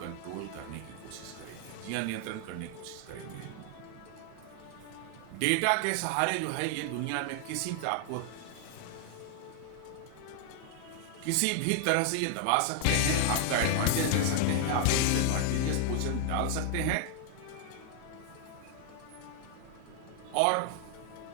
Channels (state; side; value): different; both; correlation 0.00